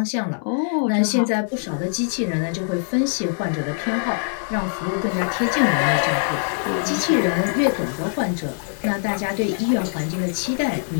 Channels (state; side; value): silent; right; digital silence